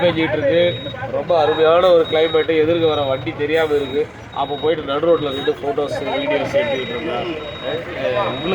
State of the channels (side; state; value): both; identical; correlation 1.00